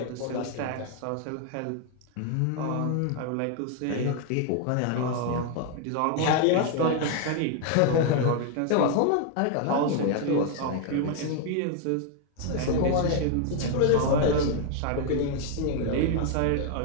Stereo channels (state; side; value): different; both; correlation 0.01